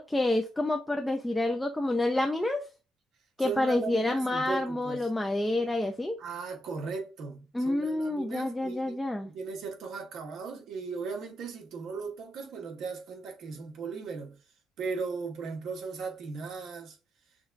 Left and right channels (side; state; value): both; normal; correlation 0.87